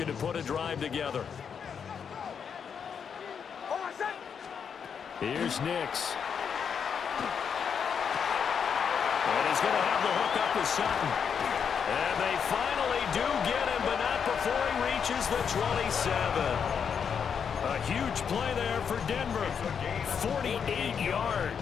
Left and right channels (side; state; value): right; quieter; 7.0 dB